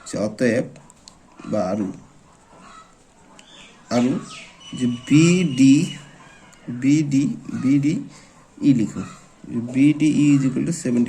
যে অতএব বা আৰু যে বি ডি ই লিখোঁ B D E is equal to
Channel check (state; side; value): identical; both; correlation 1.00